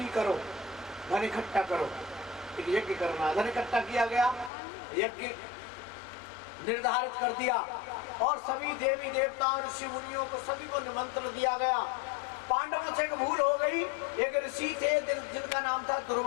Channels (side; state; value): right; drops out; at 4.5 s